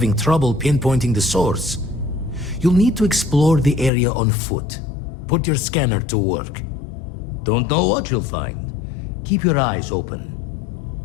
trouble pinpointing the source. You'll need to explore the area on foot. Put your scanner to work. Don't know what you'll find. Keep your eyes open.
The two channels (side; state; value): right; drops out; at 3.9 s